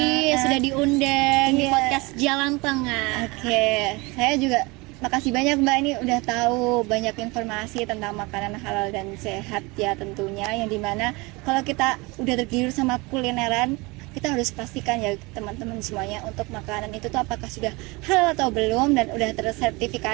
sudah diundang di podcast Jalan Tengah. Oke, saya juga makasih banyak Mbak, ini udah tahu banyak informasi tentang makanan halal dan sehat ya tentunya, yang dimana kalau kita udah tergiur sama kulineran, kita harus pastikan ya teman-teman semuanya, untuk makanan itu tuh apakah sudah halal atau belum, dan udah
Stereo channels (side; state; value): left; quieter; 25.2 dB